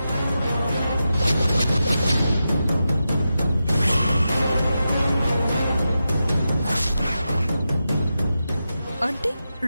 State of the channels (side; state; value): both; inverted; correlation -0.90